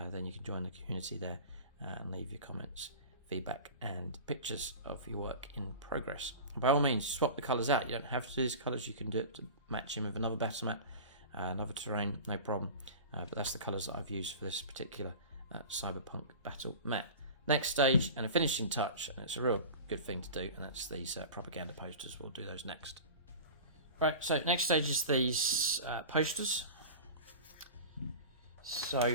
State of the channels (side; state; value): both; inverted; correlation -0.34